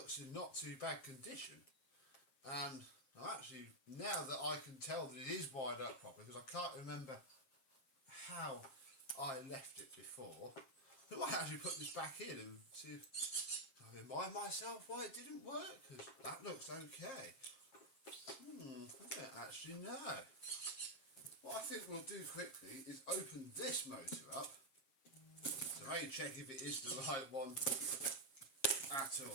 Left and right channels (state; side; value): late; right; 7.5 ms